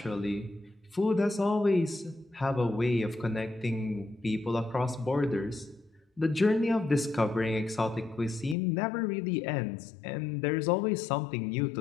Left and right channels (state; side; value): drops out; right; at 8.6 s